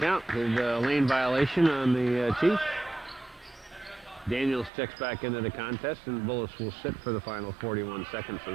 count. There's a lane violation on the Chiefs. Daniels checks back into the contest, and Bullis will sit for the final 41 seconds of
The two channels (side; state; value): left; drops out; at 4.7 s